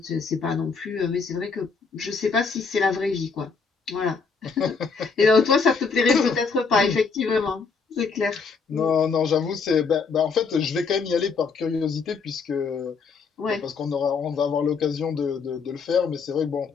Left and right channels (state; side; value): quieter; right; 5.1 dB